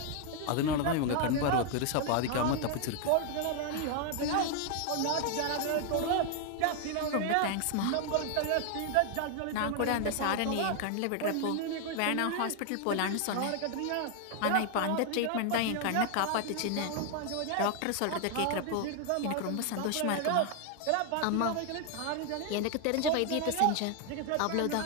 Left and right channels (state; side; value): different; both; correlation 0.00